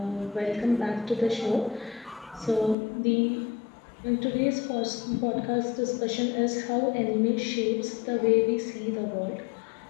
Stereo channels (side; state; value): right; drops out; at 2.8 s